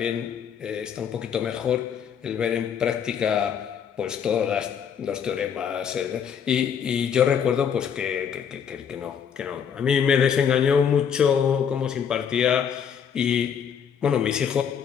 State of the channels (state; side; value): quieter; right; 7.7 dB